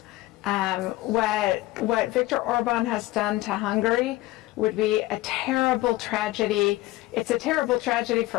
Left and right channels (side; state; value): right; quieter; 18.1 dB